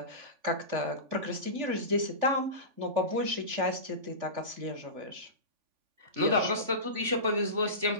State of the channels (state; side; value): late; left; 3.5 ms